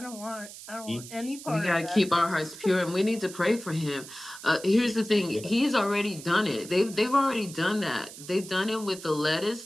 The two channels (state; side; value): noise; right; hiss, 14 dB below the sound